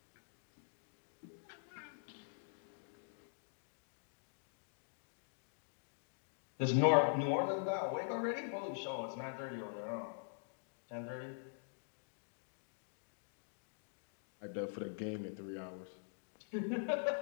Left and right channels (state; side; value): silent; right; digital silence